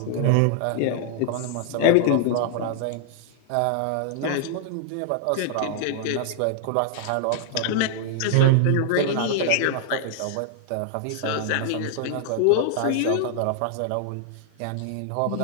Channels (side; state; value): both; different; correlation 0.00